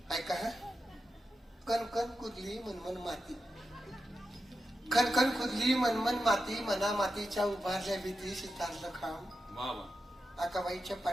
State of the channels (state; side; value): normal; both; correlation 0.89